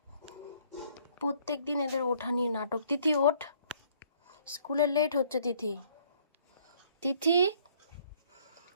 প্রত্যেক দিন এদের ওঠা নিয়ে নাটক। তিথি ওঠ, স্কুলে লেট হচ্ছে। তিথি, তিথি,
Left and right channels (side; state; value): both; inverted; correlation -0.62